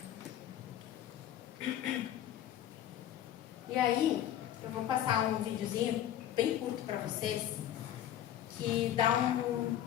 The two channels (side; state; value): right; quieter; 11.6 dB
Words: E aí, eu vou passar um videozinho bem curto para vocês, que dá